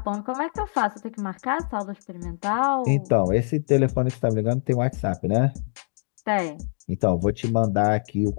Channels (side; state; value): right; silent; digital silence